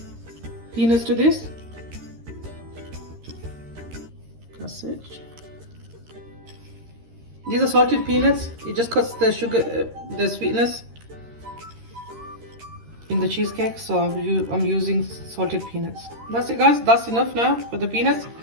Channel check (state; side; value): late; left; 13 ms